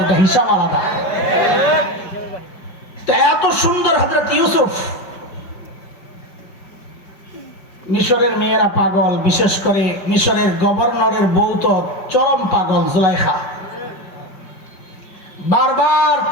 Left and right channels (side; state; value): right; late; 5.2 ms